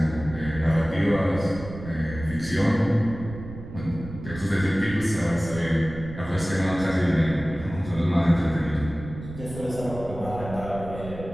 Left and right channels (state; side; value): noise; right; rumble, 12 dB below the sound